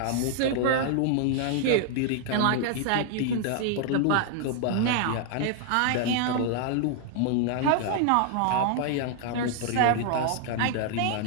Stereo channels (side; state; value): both; different; correlation 0.00